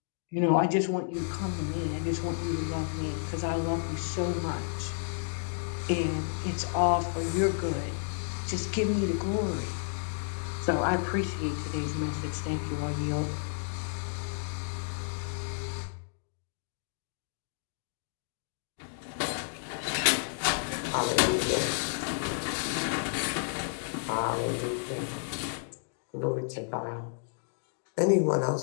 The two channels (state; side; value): silent; right; digital silence